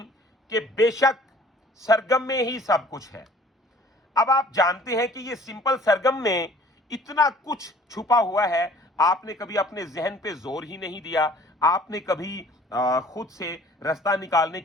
कि बेशक सरगम में ही सब कुछ है। अब आप जानते हैं कि ये सिंपल सरगम में इतना कुछ छुपा हुआ है। आपने कभी अपने जहन पे जोर ही नहीं दिया, आपने कभी खुद से रास्ता निकालने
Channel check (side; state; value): both; normal; correlation 0.52